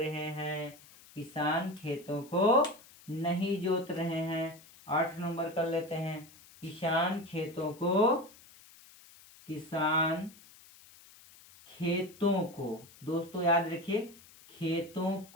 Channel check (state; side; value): noise; left; hiss, 23 dB below the sound